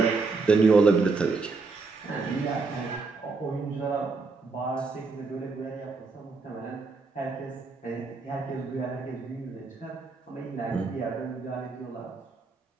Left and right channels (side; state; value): left; quieter; 4.2 dB